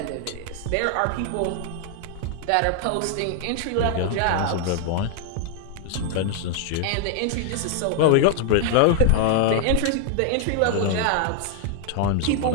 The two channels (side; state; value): both; different; correlation 0.00